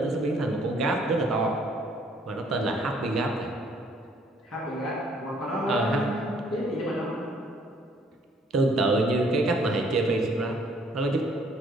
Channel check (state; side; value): normal; both; correlation 0.63